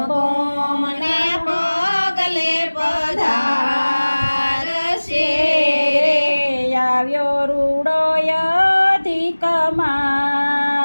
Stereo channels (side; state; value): both; inverted; correlation -1.00